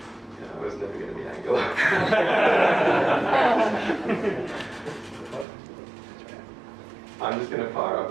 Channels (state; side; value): drops out; left; at 5.5 s